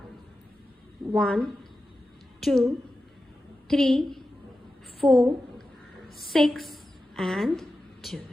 1, 2, 3, 4, 6 and 12.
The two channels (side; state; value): both; normal; correlation 0.92